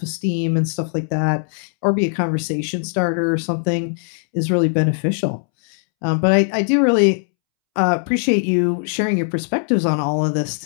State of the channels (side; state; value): right; silent; 66 dB below the other